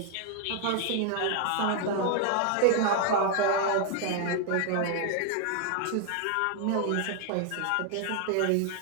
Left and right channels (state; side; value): different; both; correlation 0.00